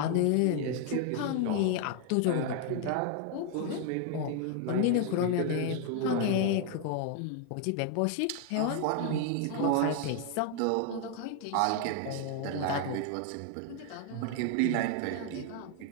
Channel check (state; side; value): different; both; correlation 0.00